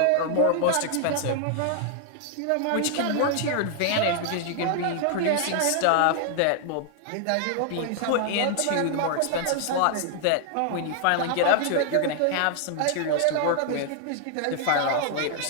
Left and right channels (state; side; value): different; both; correlation 0.00